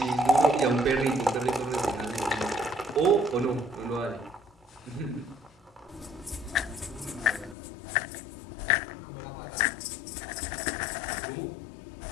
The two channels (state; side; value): drops out; right; at 7.6 s